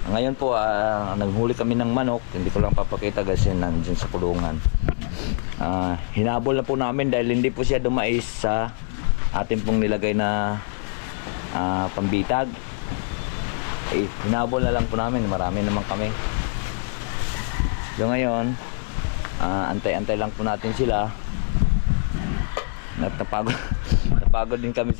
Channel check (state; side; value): silent; right; 58 dB below the other